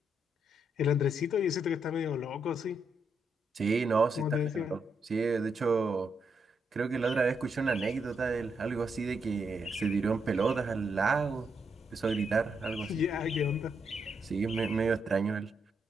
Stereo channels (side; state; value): both; normal; correlation 0.79